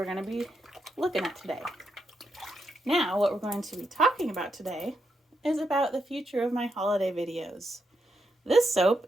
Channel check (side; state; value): both; normal; correlation 0.82